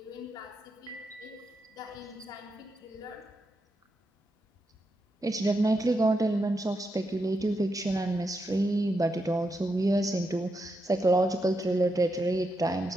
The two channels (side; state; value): both; normal; correlation 0.84